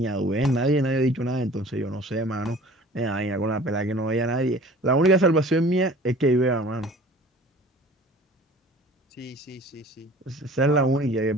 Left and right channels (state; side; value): normal; both; correlation 0.46